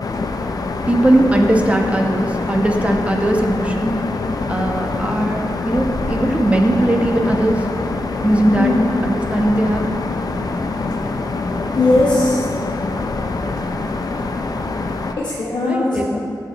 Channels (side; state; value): both; normal; correlation 0.88